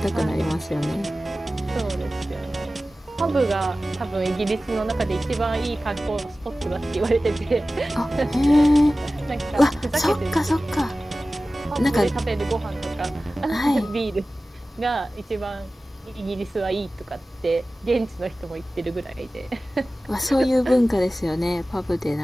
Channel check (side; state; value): both; normal; correlation 0.96